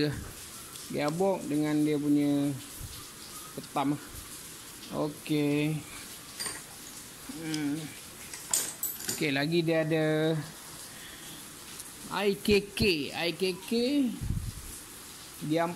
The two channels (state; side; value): identical; both; correlation 1.00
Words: Gearbox dengan dia punya petam. Okay. Okay, lagi dia ada IKK dia